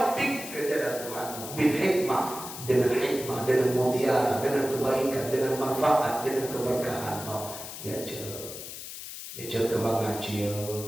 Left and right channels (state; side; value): noise; left; hiss, 10 dB below the sound